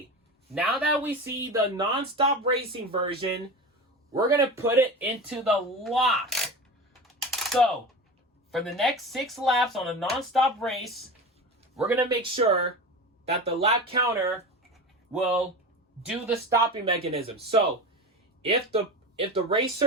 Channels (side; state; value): both; normal; correlation 0.27